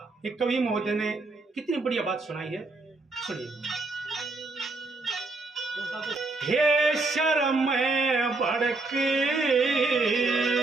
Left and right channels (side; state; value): left; quieter; 3.4 dB